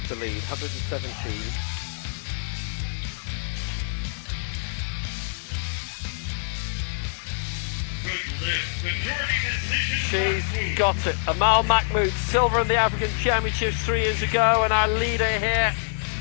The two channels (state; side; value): silent; right; digital silence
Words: the lead, 117. She's got it. Amal Mahmoud, silver in the African Championships 3 years ago, and our leader here.